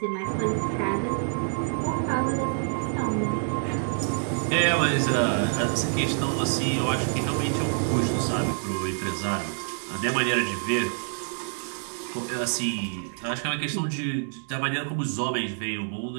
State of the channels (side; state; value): left; silent; digital silence